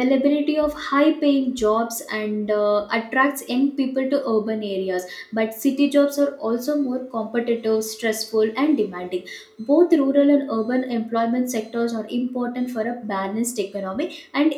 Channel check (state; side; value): identical; both; correlation 1.00